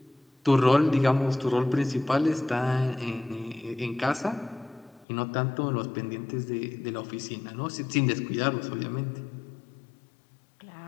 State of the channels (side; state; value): right; drops out; at 5.1 s